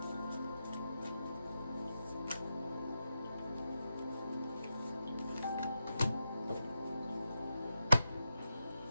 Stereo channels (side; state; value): both; inverted; correlation -0.88